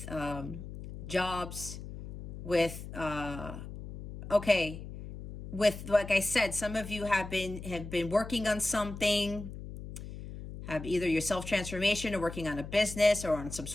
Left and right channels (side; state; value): left; noise; hum, 11 dB below the sound